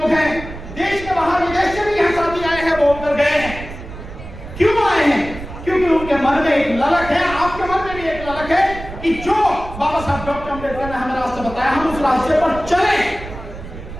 हैं, देश के बाहर विदेश से भी यहाँ साथी आए हैं, बोलकर गए हैं। क्यों आए हैं? क्योंकि उनके मन में एक ललक है, आपके मन में भी एक ललक है कि जो बाबा साहब डॉक्टर अम्बेडकर ने हमें रास्ता बताया, हम उस रास्ते पर चलें।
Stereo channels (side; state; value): right; noise; rumble, 12 dB below the sound